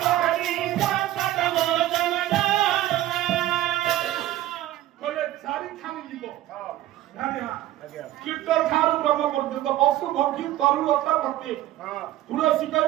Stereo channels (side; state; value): left; quieter; 14.4 dB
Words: କୀର୍ତ୍ତନ ଠାରୁ ବ୍ରହ୍ମ ପର୍ଯ୍ୟନ୍ତ ପଶୁ ପକ୍ଷୀ ତରୁଲତା ପ୍ରତି ତୁଳସୀ